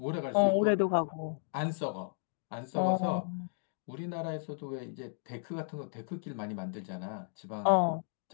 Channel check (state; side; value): silent; right; digital silence